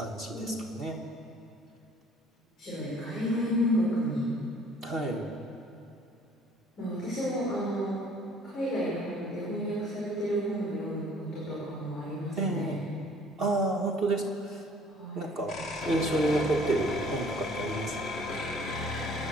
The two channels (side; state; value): both; normal; correlation 0.55